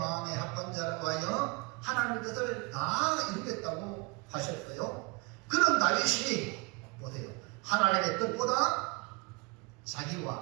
합방자라고 하여 하나님의 뜻을 다 이루겠다고 하셨어요. 그런 다윗이 보세요. 하나님의 뜻보다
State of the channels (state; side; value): quieter; left; 28.5 dB